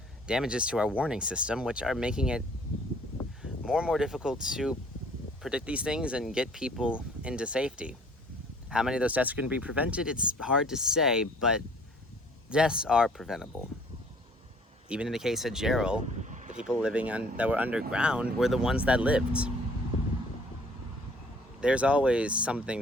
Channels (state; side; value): normal; both; correlation 0.56